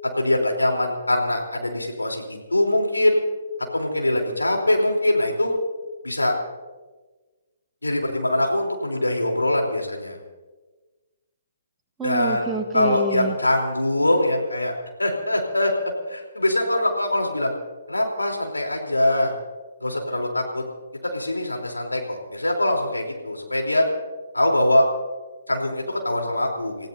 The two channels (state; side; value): inverted; both; correlation -0.88